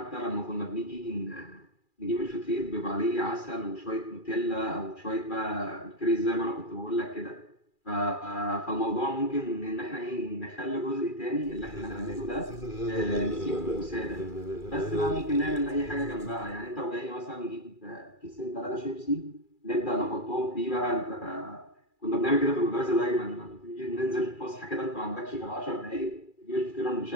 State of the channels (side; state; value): right; late; 2.4 ms